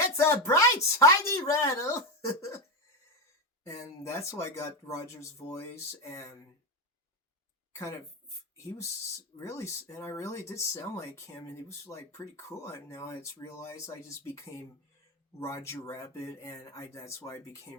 a bright, shiny rattle. and that's why I got Roger's voice, and kind of he was really, and I really did sound like him, and he was like pretty cool. And now it's realized I just became Roger Rabbit, and that's why I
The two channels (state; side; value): normal; both; correlation 0.12